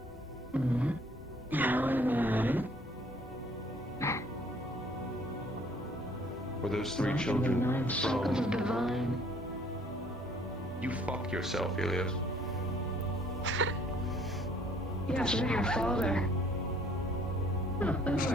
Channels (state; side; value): normal; both; correlation 0.59